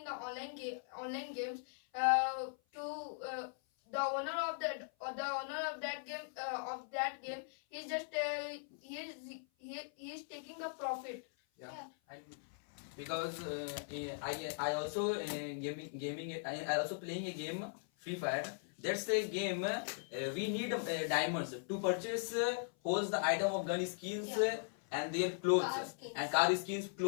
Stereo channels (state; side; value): silent; right; 51 dB below the other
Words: the online games, the owner of that game is just he is taking the profit. Yeah. And because I also I also playing a game Free Fire. That's a game we need diamonds to purchase holds the item of gun skins and their clothes Car skins. and car skins,